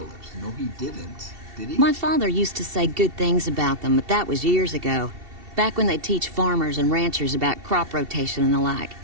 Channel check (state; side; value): late; left; 2.7 ms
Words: No, he didn't. Did he? My father used to say good things about them, but that was years ago. Back when they'd teach farmers and ranchers about crop rotation and the like.